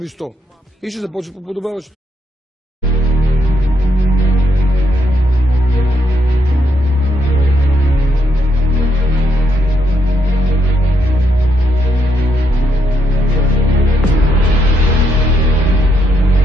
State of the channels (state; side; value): normal; both; correlation 0.77